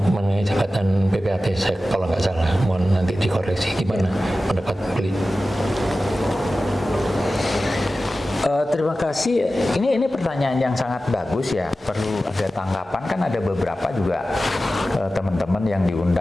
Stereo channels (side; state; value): both; normal; correlation 0.94